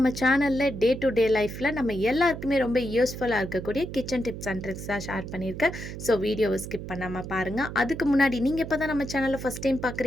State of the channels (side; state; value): right; noise; hum, 9 dB below the sound